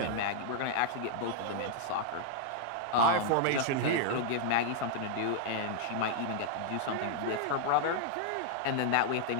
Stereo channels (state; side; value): different; both; correlation -0.01